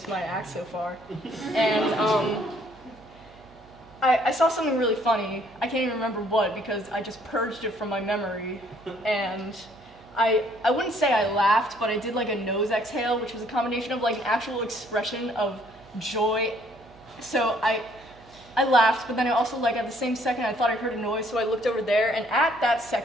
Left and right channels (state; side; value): noise; right; hum, 26 dB below the sound